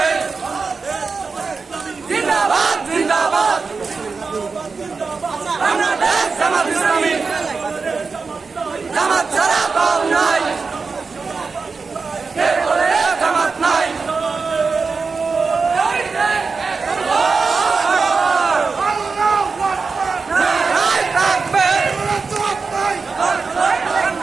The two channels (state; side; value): quieter; left; 4.6 dB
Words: জিন্দাবাদ জিন্দাবাদ বাংলাদেশ জামাত ইসলামী জামাত ছাড়া দল নাই কে বলে জামাত নাই